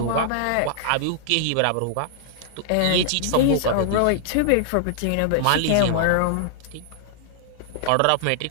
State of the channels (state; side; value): different; both; correlation -0.01